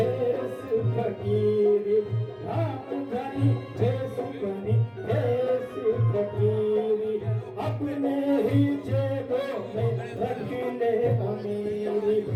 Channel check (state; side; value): identical; both; correlation 1.00